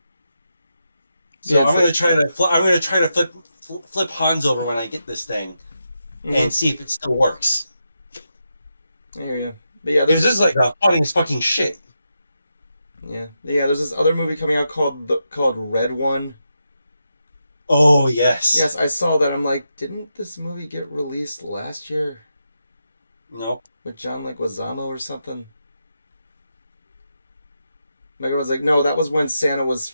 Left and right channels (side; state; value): both; inverted; correlation -0.86